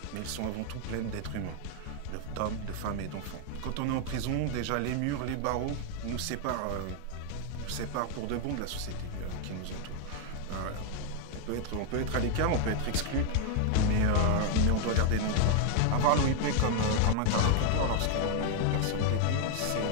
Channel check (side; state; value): both; different; correlation 0.00